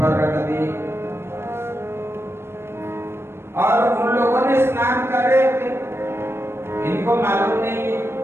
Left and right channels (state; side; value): late; left; 0.12 ms